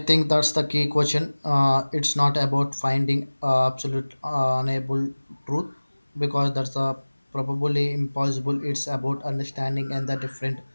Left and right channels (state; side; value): inverted; both; correlation -1.00